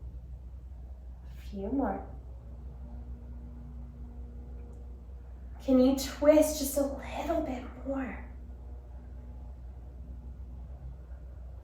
few more. Can you twist just a little bit more?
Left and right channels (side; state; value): both; identical; correlation 1.00